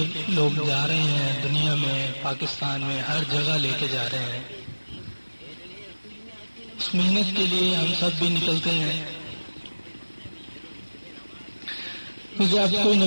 لوگ جا رہے ہیں، دنیا میں، پاکستان میں، ہر جگہ لے کے جا رہے ہیں، اس محنت کے لیے ہم سب بھی نکلتے ہیں۔ کیونکہ اب کوئی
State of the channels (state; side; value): inverted; both; correlation -1.00